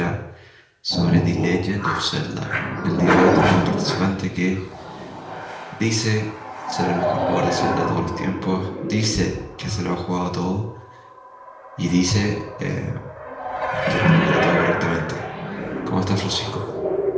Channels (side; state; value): both; identical; correlation 1.00